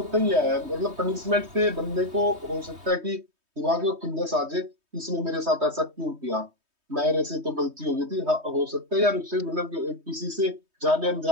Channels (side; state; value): left; late; 3.2 ms